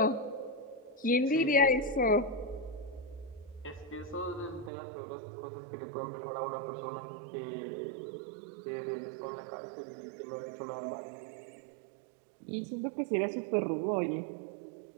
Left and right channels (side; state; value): left; drops out; at 4.7 s